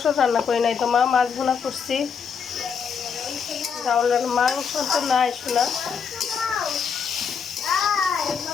রান্না করি নাই তো মা, মাছ ভুনা করছি। ডাউল মাংস তো নাই শোনা।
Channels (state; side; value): quieter; right; 6.5 dB